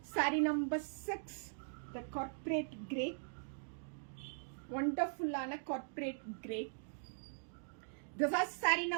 Saree number 6, the corporate grey. Wonderful ஆன corporate grey. This is saree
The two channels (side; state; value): left; silent; digital silence